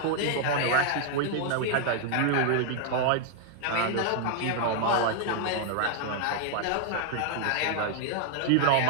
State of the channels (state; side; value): different; both; correlation -0.01